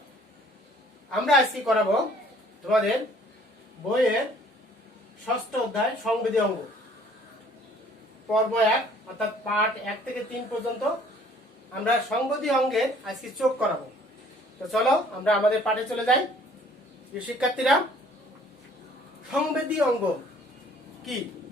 আমরা আজকে করাবো তোমাদের বইয়ের ষষ্ঠ অধ্যায় সংবেদী অঙ্গ, পর্ব 1 অর্থাৎ পার্ট 1 থেকে 3 পর্যন্ত আমরা সংবেদী অঙ্গের আজকে চোখ করাবো। তো চলো আমরা আমাদের পাঠে চলে যাই। শিক্ষার্থীরা, সংবেদী অঙ্গ কি?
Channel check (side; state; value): both; normal; correlation 0.56